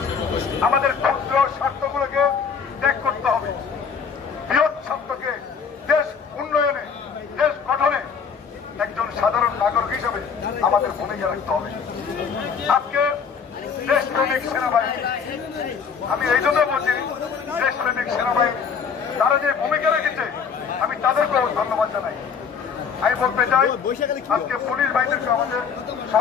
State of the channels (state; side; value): quieter; right; 6.3 dB